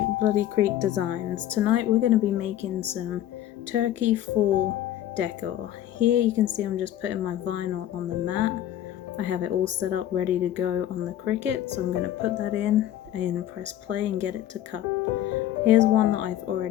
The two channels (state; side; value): quieter; right; 12.3 dB